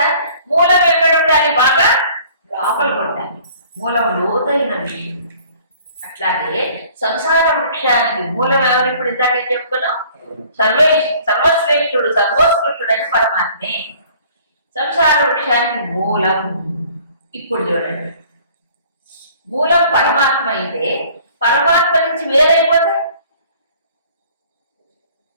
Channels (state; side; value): inverted; both; correlation -0.54